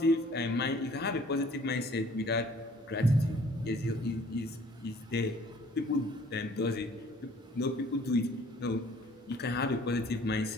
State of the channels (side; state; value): both; normal; correlation 0.55